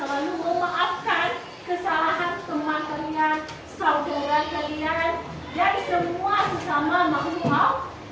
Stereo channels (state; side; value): identical; both; correlation 1.00